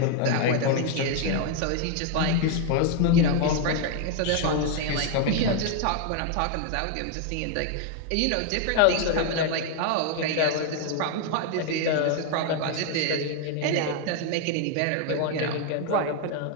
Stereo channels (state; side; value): different; both; correlation 0.00